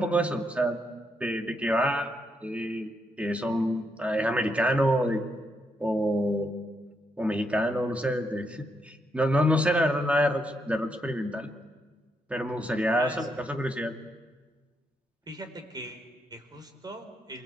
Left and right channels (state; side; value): normal; both; correlation 0.79